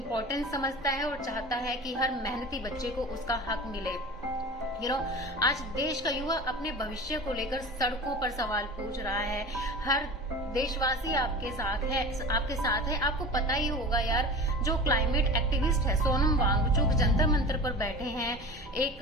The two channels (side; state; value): both; normal; correlation 0.34